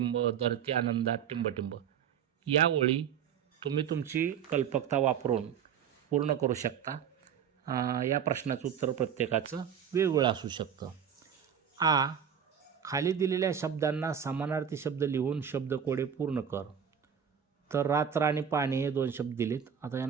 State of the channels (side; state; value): left; quieter; 8.1 dB